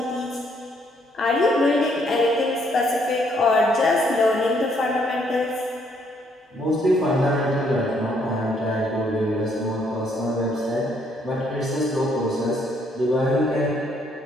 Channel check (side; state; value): both; normal; correlation 0.69